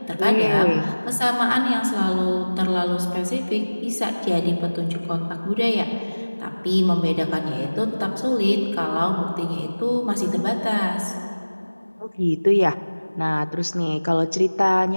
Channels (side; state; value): both; inverted; correlation -1.00